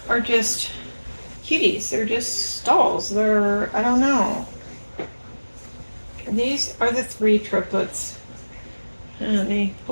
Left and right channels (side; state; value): both; inverted; correlation -1.00